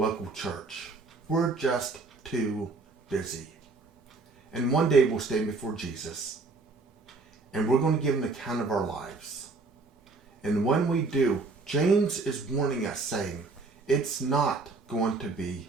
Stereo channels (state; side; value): quieter; left; 3.8 dB